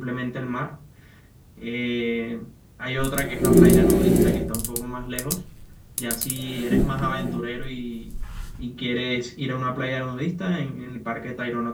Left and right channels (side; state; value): both; identical; correlation 1.00